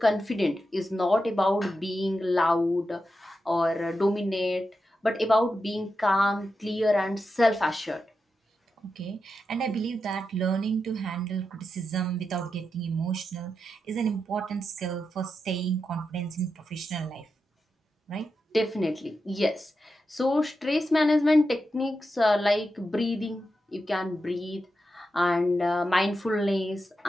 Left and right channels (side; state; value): both; normal; correlation 0.88